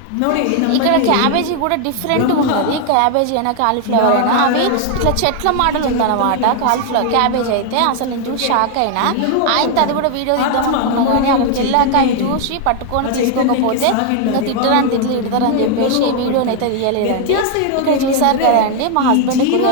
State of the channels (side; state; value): both; different; correlation 0.00